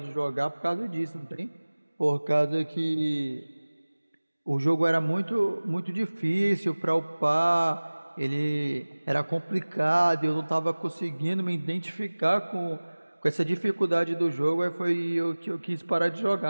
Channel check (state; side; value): inverted; both; correlation -1.00